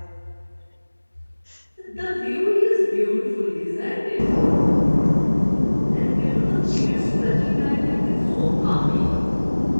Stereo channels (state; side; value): inverted; both; correlation -1.00